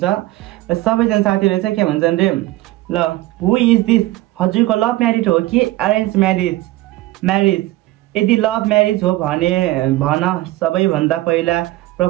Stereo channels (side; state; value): left; quieter; 17.5 dB